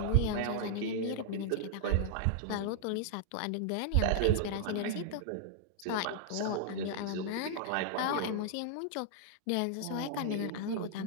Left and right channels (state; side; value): different; both; correlation -0.01